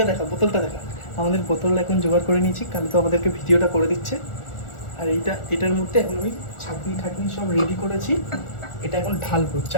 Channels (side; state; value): right; late; 1.4 ms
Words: দেখা, বোতলটা দেখা। আমাদের বোতলটা এখন জোগাড় করে নিয়েছি, কালকে তো আমাদেরকে ভিডিওটা করে দিচ্ছে। আর এটার মধ্যে এখন আমি ছাঁকনি সব রেডি করেছি। এটা এখন ঢালবো।